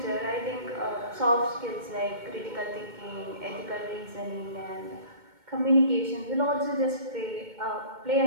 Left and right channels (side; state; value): left; late; 2.2 ms